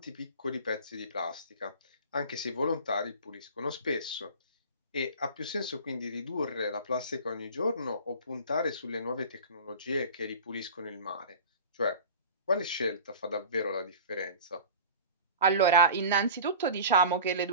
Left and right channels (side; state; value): both; inverted; correlation -0.38